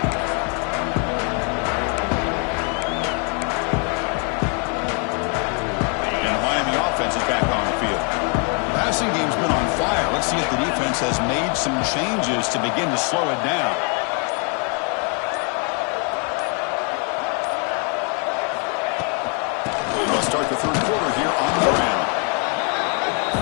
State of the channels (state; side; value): quieter; right; 37.9 dB